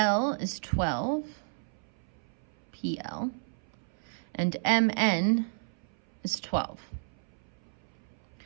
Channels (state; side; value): silent; left; 56 dB below the other